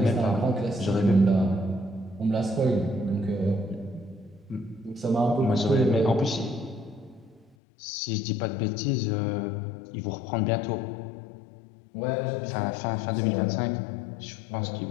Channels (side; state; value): right; drops out; at 7.6 s